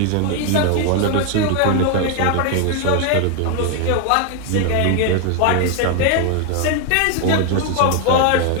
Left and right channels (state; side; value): different; both; correlation 0.01